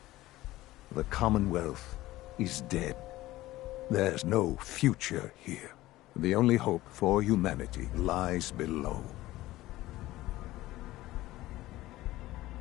The Commonwealth is dead. There's no future here. The only hope for humanity lies below.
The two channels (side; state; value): right; quieter; 17.0 dB